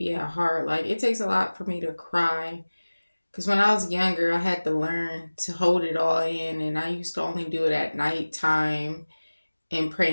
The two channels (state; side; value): inverted; both; correlation -1.00